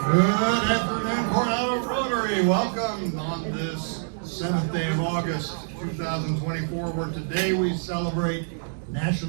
afternoon, Coronado Rotary. Welcome on this 7th day of August, 2024, where today we celebrate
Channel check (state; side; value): silent; left; digital silence